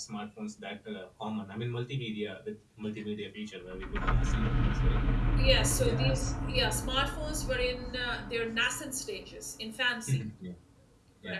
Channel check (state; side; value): identical; both; correlation 1.00